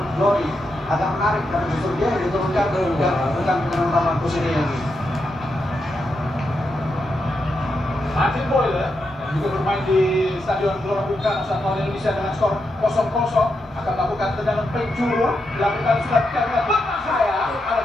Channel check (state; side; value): normal; both; correlation 0.84